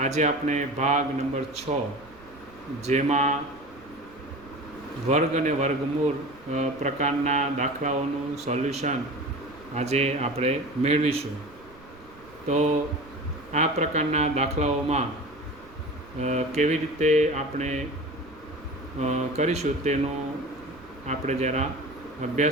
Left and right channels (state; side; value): noise; right; rumble, 23 dB below the sound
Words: આજે આપણે ભાગ નંબર 6 જેમાં વર્ગ અને વર્ગમૂળ પ્રકારના દાખલાઓનું સોલ્યુશન આજે આપણે મેળવીશું. તો આ પ્રકારના દાખલાઓમાં કેવી રીતે આપણે કરીશું તેનો આપણે જરા